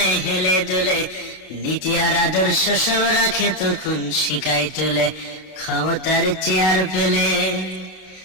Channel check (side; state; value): right; late; 32 ms